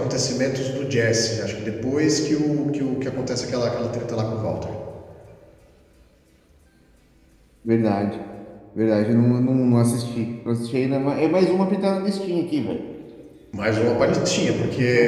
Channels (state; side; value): identical; both; correlation 1.00